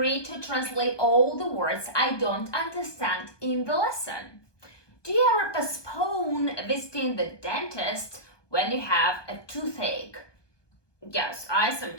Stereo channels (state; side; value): late; right; 1.2 ms